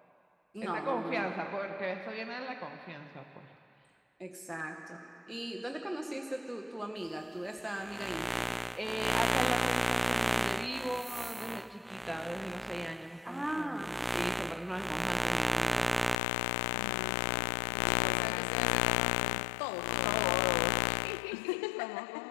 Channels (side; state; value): right; drops out; at 16.2 s